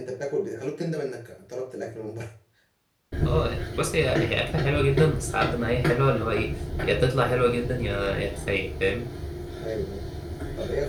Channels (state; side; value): identical; both; correlation 1.00